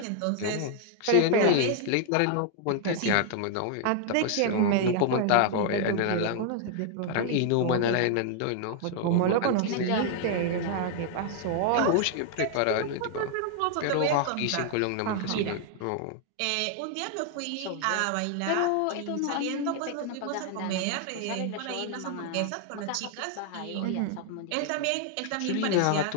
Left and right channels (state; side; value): different; both; correlation 0.00